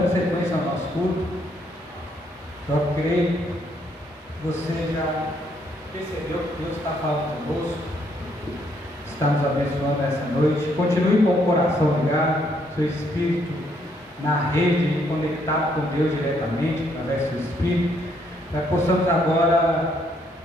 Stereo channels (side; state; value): both; normal; correlation 0.71